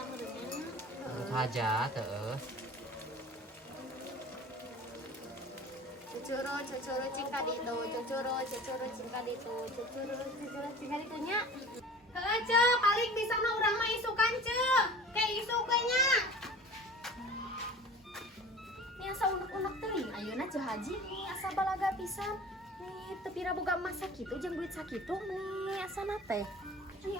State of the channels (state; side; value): normal; both; correlation 0.41